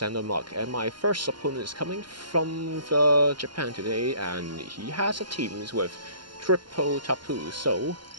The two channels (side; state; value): left; late; 0.72 ms